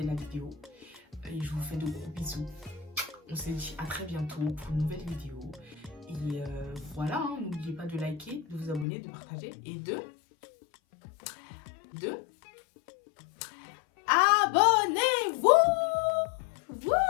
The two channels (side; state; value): right; drops out; at 8.8 s